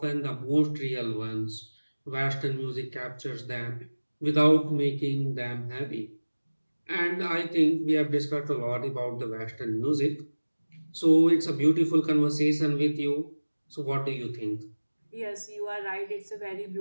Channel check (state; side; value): inverted; both; correlation -1.00